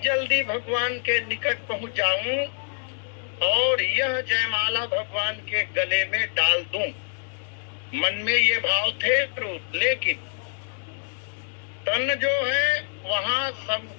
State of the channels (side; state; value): right; silent; digital silence